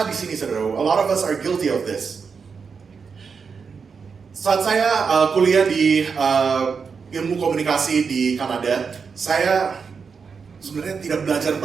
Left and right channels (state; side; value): quieter; left; 5.6 dB